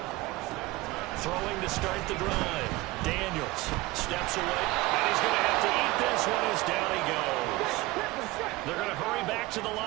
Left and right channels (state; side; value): quieter; left; 20.1 dB